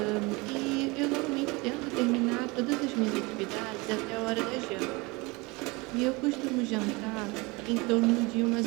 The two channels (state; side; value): quieter; left; 25.6 dB